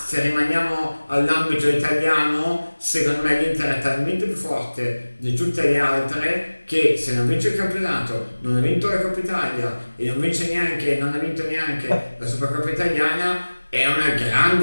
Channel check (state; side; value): inverted; both; correlation -1.00